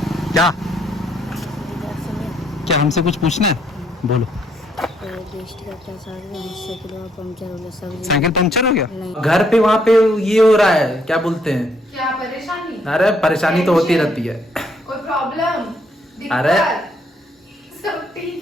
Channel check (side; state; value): both; normal; correlation 0.70